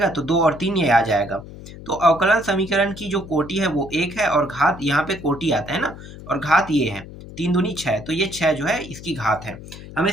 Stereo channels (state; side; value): noise; left; hum, 15 dB below the sound